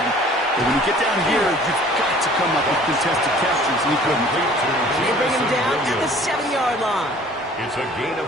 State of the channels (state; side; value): normal; both; correlation 0.51